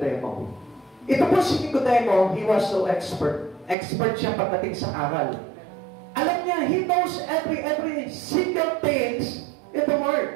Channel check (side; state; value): left; drops out; at 3.8 s